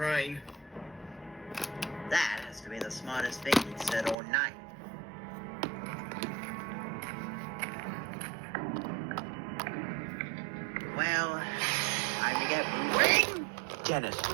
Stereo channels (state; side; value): drops out; left; at 4.2 s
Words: That has to be the smartest thing you've said all night. Well, time to get moving. Dennis